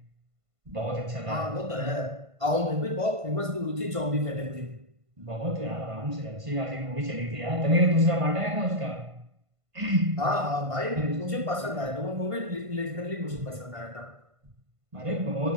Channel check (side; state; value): left; late; 1.5 ms